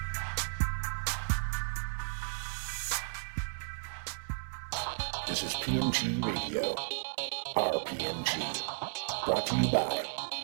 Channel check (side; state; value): left; silent; 55 dB below the other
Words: This is PMG Radio, RPMG, brought to you by